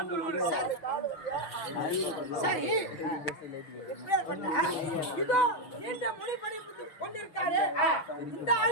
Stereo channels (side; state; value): right; late; 6.1 ms